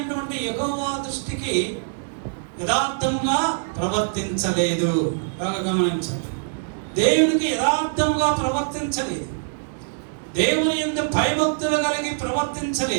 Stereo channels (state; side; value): silent; left; digital silence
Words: యెహోవా దృష్టికి యథార్థముగా ప్రవర్తించలేదు. బాగా గమనించండి, దేవునికి యథార్థముగా ప్రవర్తించలేదు, దేవుని యందు భయభక్తులు కలిగి